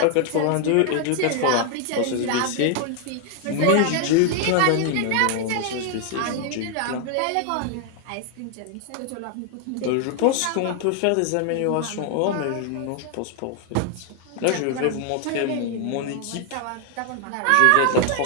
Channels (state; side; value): different; both; correlation 0.00